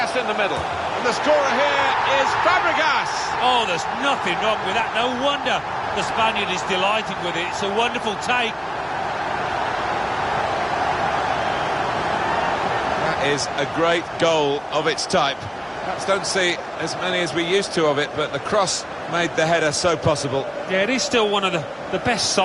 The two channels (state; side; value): identical; both; correlation 1.00